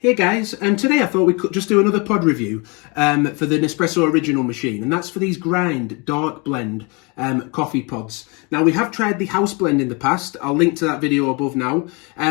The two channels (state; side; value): quieter; right; 30.0 dB